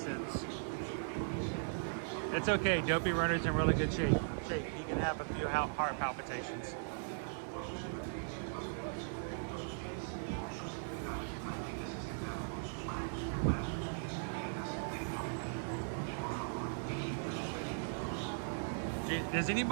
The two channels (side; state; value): left; silent; digital silence